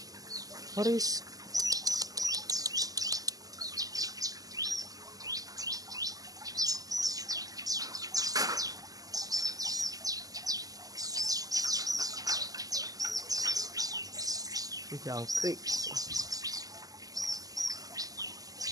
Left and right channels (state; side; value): late; left; 0.17 ms